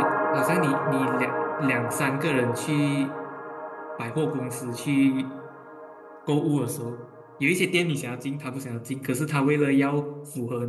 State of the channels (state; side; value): identical; both; correlation 1.00